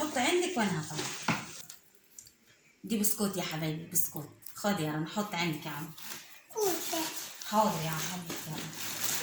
عندك وانا هطلع. دي بسكوت يا حبايبي بسكوت. خد يا رنا حط عندك يا عم. حاضر يا عم حبيبتي.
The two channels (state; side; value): identical; both; correlation 1.00